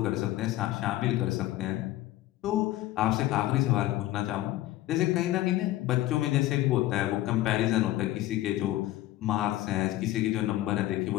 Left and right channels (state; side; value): quieter; right; 15.6 dB